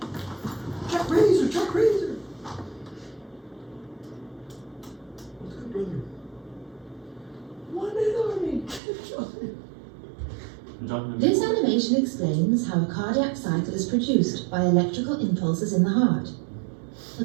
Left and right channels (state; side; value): drops out; left; at 8.8 s